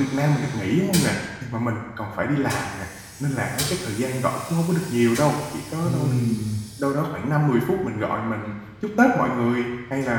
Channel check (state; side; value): identical; both; correlation 1.00